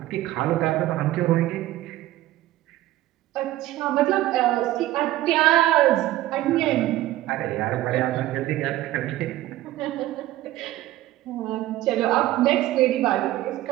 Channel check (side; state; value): left; quieter; 15.4 dB